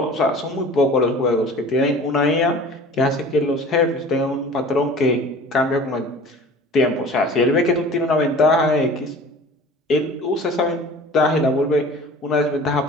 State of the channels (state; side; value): normal; both; correlation 0.43